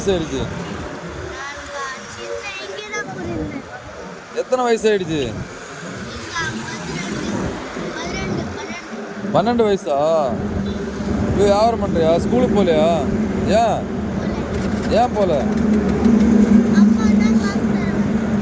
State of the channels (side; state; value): both; identical; correlation 1.00